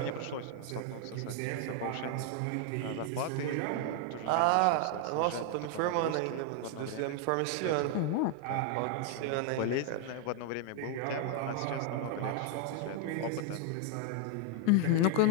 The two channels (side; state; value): both; different; correlation 0.00